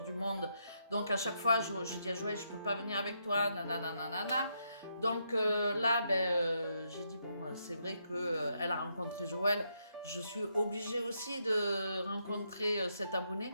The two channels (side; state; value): both; inverted; correlation -0.78